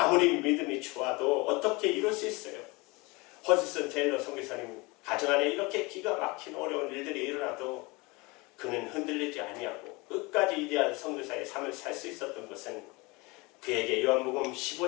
믿음이 좋아도 어떻게 이룰 수 있어요? 허드슨 테일러 선교사님 가정 안에 이렇게 기가 막힌 어려운 일들이 일어나도 그는 흔들리지 아니하고 끝까지 위대한 선교사의 삶을 살 수 있었던 것은 그에게 요한복음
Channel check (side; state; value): right; quieter; 25.1 dB